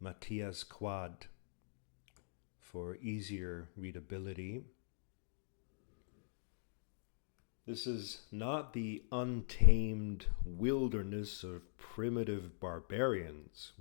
Matthias Quad for easier readability. This is not the untamed wilderness of primitive barbarians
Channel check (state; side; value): silent; right; digital silence